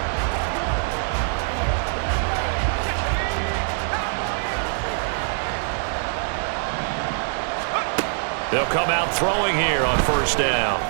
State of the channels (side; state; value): left; silent; 57 dB below the other